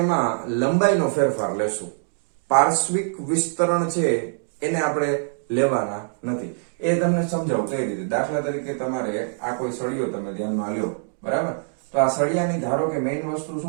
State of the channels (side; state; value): left; silent; digital silence